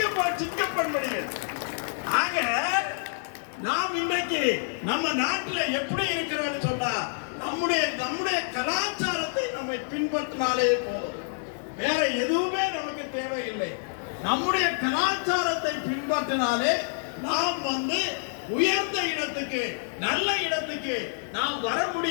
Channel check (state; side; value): silent; right; digital silence